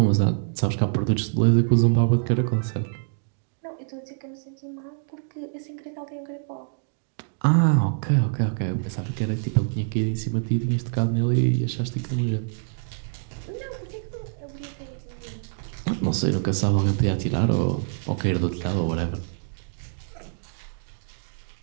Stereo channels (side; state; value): left; silent; digital silence